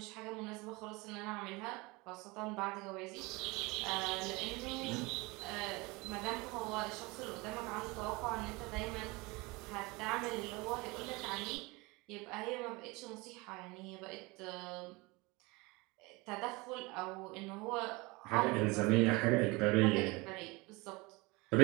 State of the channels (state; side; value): quieter; left; 24.7 dB